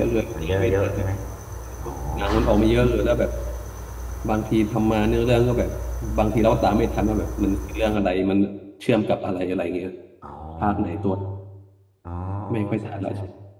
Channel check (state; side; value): identical; both; correlation 1.00